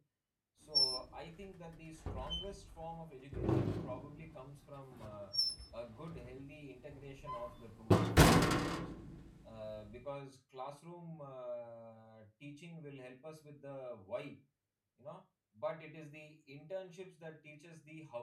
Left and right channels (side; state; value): both; identical; correlation 1.00